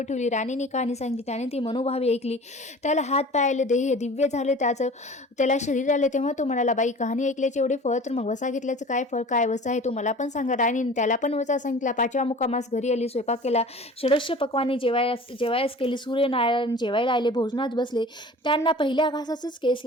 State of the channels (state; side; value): normal; both; correlation 0.42